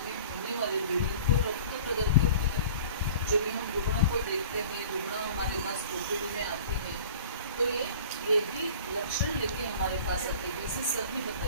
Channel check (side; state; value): both; inverted; correlation -0.44